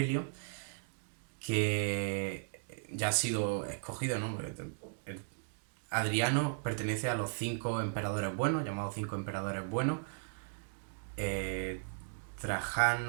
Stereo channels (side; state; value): left; silent; digital silence